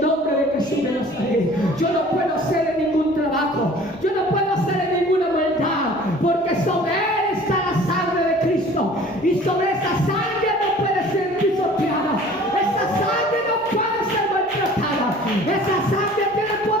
nombre de Jesús de Nazaret. Yo no puedo hacerle ningún trabajo, yo no puedo hacerle ninguna maldad, porque sobre él está la sangre de Cristo, y sobre esa sangre no puede ser pisoteada. Esa sangre no puede ser maltratada. Esa sangre tiene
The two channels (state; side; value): normal; both; correlation 0.48